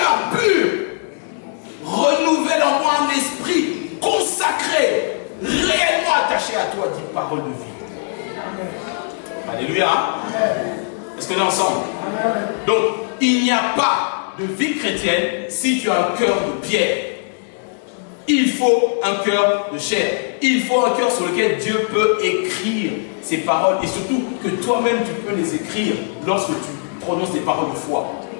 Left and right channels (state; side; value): silent; right; digital silence